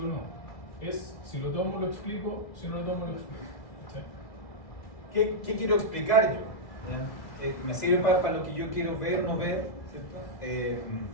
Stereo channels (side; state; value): right; late; 1.9 ms